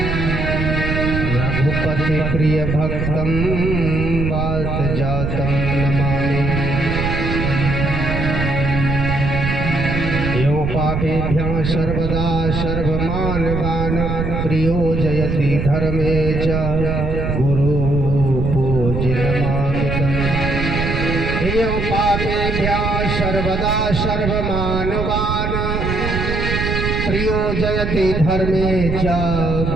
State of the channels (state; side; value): noise; right; rumble, 2 dB below the sound